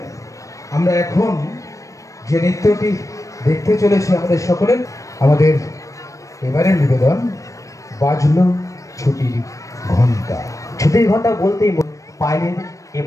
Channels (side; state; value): right; late; 0.16 ms